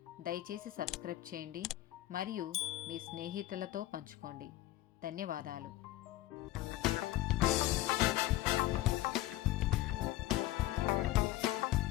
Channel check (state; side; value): quieter; right; 16.2 dB